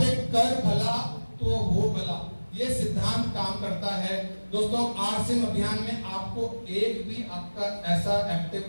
कर भला तो हो भला, ये सिद्धांत काम करता है। दोस्तों आरसीएम अभियान में आपको एक भी आपका ऐसा एक्टिव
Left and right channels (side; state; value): both; inverted; correlation -1.00